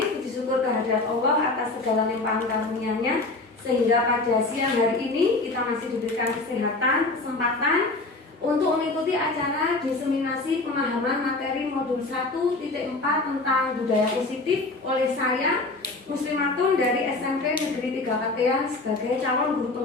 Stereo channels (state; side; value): quieter; right; 3.2 dB